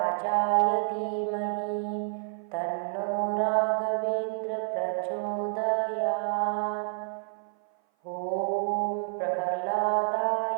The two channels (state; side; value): silent; left; 55 dB below the other